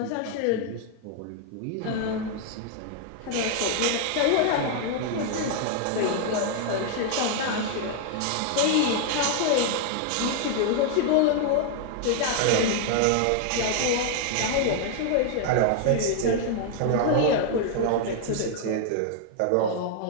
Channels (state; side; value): different; both; correlation 0.00